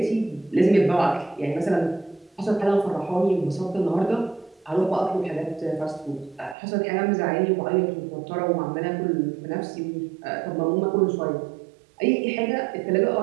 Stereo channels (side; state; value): left; drops out; at 6.6 s